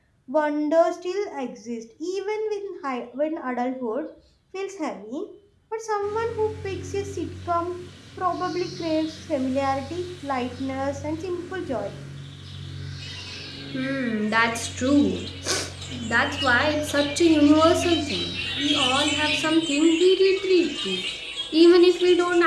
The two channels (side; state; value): both; identical; correlation 1.00